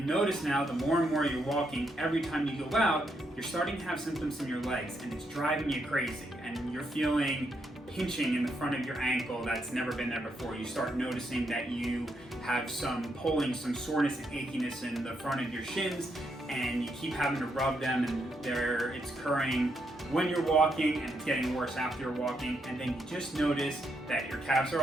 notice now, the more and more you're walking, every time you go out, you're starting to have symptoms in your legs, and it's driving you crazy, and you're feeling pinching in the front of your ankle that's never been there before. You start noticing that you have some pulling, some soreness and achiness in the front of your shins, and you keep having to rub them, and it's occurring when you're walking, and it's getting worse after you're walking, and then you just notice that your calves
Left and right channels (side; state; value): both; normal; correlation 0.79